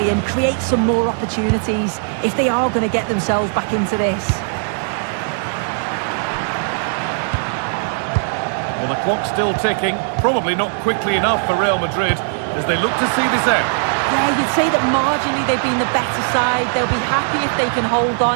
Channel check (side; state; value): left; silent; 67 dB below the other